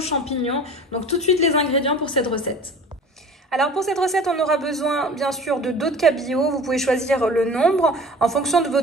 Donc tout de suite les ingrédients pour cette recette. Alors pour cette recette, on aura besoin bien sûr de dos de cabillaud. Vous pouvez choisir le nombre en fonction de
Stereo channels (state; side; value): normal; both; correlation 0.42